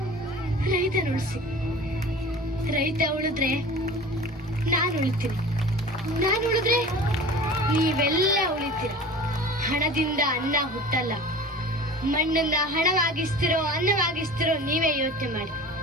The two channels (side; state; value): both; normal; correlation 0.39